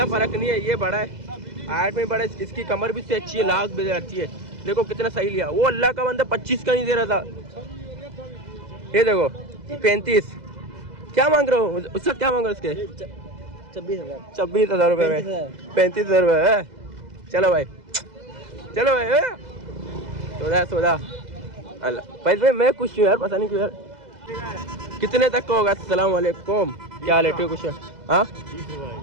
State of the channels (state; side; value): late; left; 2.0 ms